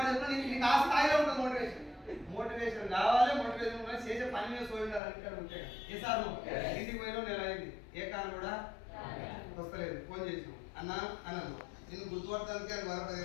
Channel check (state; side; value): drops out; right; at 5.0 s